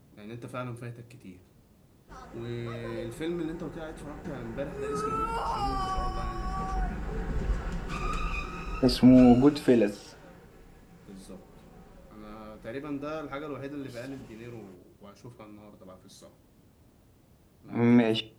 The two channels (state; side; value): identical; both; correlation 1.00